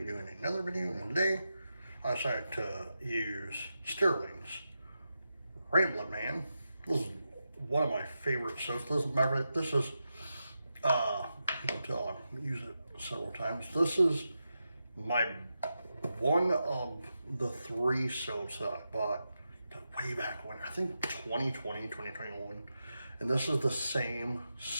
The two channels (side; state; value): both; inverted; correlation -0.89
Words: doing another video, and today I decided to use Stirling's Ramblin, man. This is one of my favorite soaps. This is until I use it several times. This is one of the 3 soaps that I bought way back when, I think 2020, 2021. And this is the same